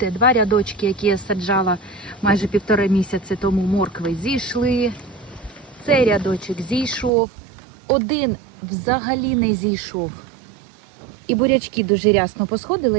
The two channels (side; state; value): left; drops out; at 7.1 s